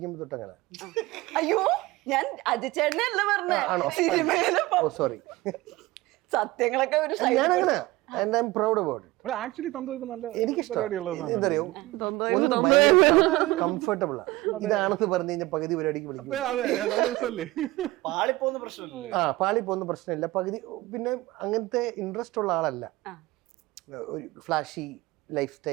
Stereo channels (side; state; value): left; quieter; 19.5 dB